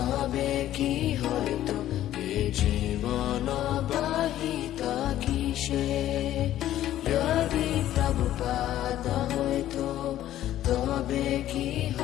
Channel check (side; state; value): right; quieter; 12.9 dB